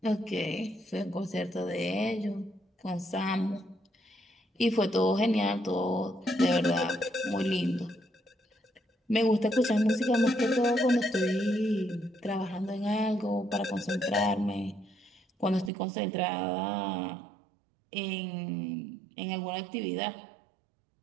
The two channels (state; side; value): drops out; left; at 15.7 s